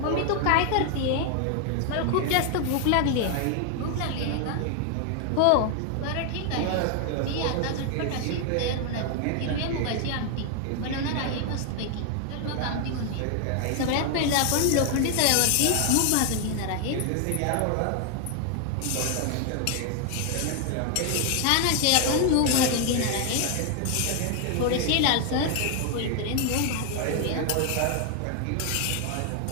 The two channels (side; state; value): both; different; correlation 0.00